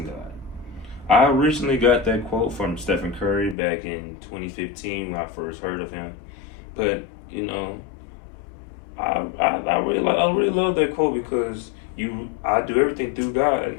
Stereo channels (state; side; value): drops out; right; at 3.6 s